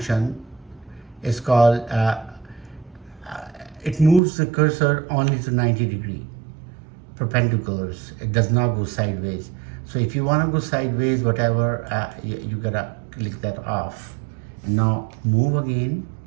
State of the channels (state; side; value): drops out; left; at 4.2 s